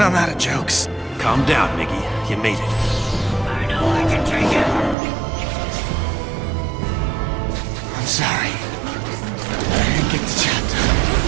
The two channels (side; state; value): left; drops out; at 5.0 s